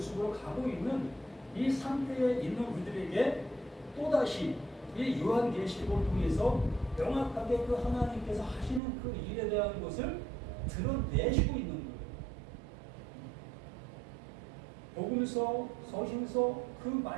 가고 있는 이 상태에 있는 우리들에게 또다시 이 요한계시록을 통해서 명확하게 그 하나님께서 하시는 그 일에 대한 것을 드러내시고 있는 거예요. 복음서, 서신서 그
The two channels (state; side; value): drops out; left; at 8.8 s